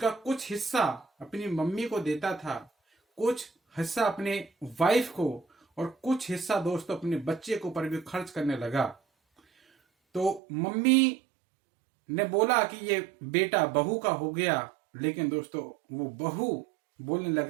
कुछ हिस्सा अपनी मम्मी को देता था, कुछ हिस्सा अपने वाइफ को और कुछ हिस्सा दोस्तों अपने बच्चे के ऊपर भी खर्च करने लगा। तो मम्मी ने बोला कि ये बेटा बहू का हो गया, लेकिन दोस्तों वो बहू बोलने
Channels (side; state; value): left; drops out; at 10.4 s